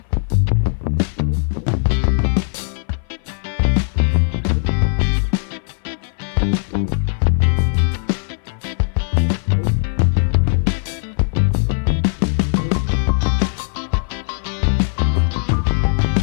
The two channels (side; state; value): right; silent; 62 dB below the other